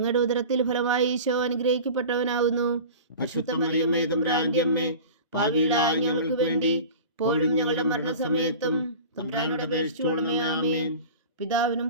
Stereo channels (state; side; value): inverted; both; correlation -0.37